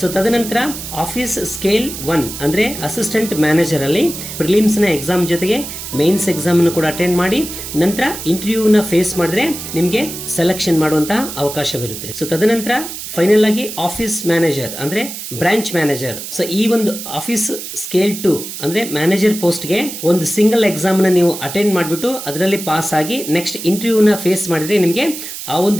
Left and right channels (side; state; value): right; noise; hiss, 9 dB below the sound